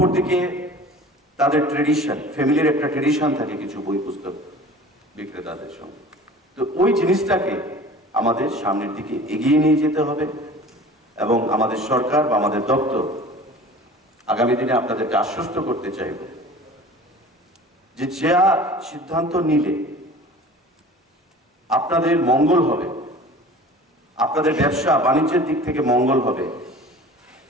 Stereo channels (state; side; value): normal; both; correlation 0.42